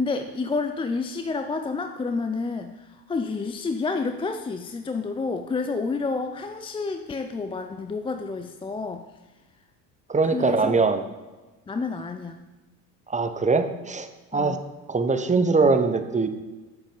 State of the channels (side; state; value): both; normal; correlation 0.49